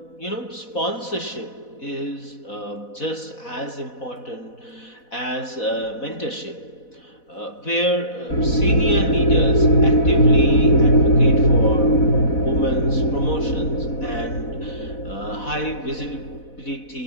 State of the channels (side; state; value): right; late; 4.1 ms